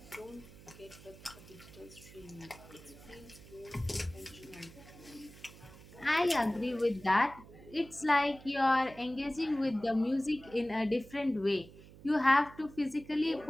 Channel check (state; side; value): noise; right; hum, 19 dB below the sound